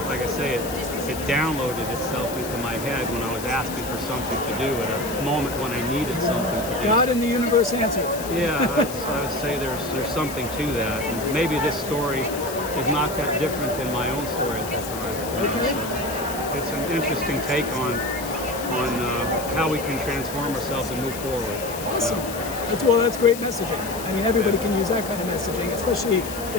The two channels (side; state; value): left; noise; hiss, 11 dB below the sound